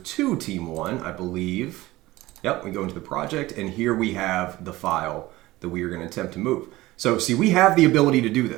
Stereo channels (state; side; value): quieter; left; 18.3 dB